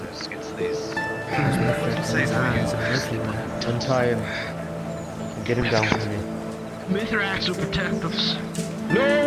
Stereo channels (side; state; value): both; identical; correlation 1.00